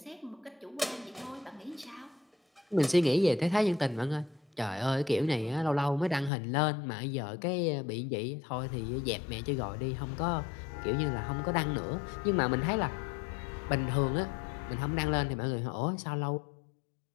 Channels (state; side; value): drops out; right; at 6.3 s